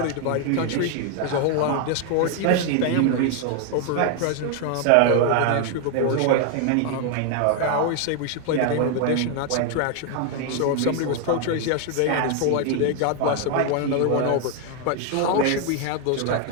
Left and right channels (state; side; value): different; both; correlation 0.01